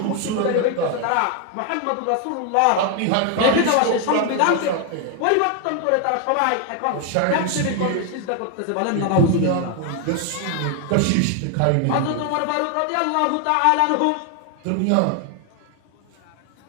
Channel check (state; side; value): different; both; correlation 0.00